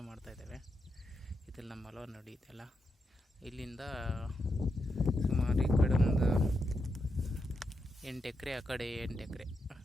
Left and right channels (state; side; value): normal; both; correlation 0.85